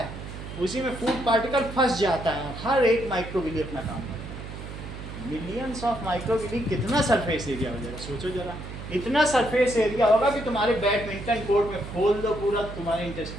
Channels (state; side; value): noise; right; hum, 10 dB below the sound